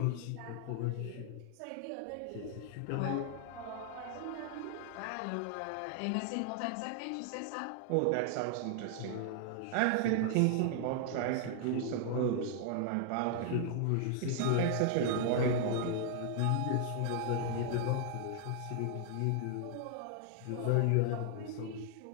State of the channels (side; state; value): both; different; correlation 0.00